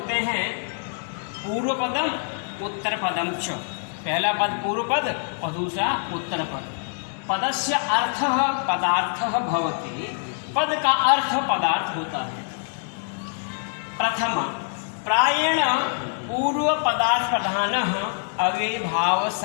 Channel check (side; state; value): right; silent; 62 dB below the other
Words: हैं। पूर्व पदम उत्तर पदम च, पहला पद पूर्व पद और दूसरा उत्तर पद। पदस्य अर्थः पदार्थः भवति, पद का अर्थ पदार्थ होता है। प्रथम प्रायेण पूर्व पदार्थ प्रधानः अव्ययभाव